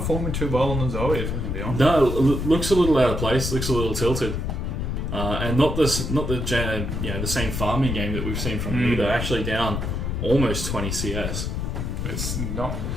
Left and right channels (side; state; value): left; noise; rumble, 2 dB below the sound